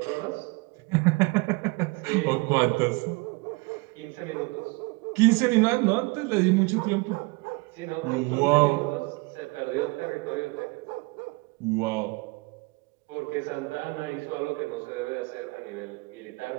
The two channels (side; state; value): left; quieter; 26.3 dB